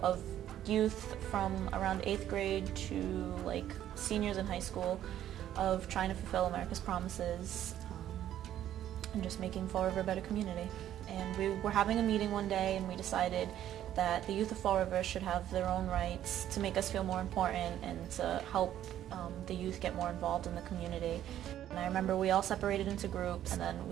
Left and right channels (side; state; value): left; quieter; 11.6 dB